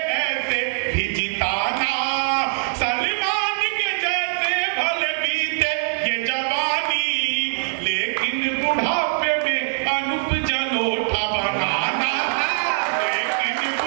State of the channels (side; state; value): left; silent; digital silence